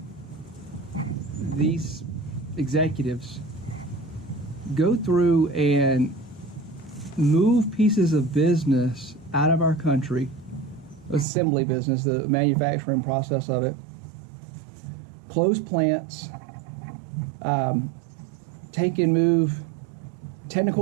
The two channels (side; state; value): left; drops out; at 11.2 s